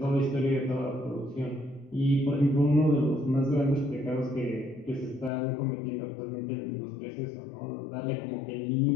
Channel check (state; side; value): drops out; right; at 5.3 s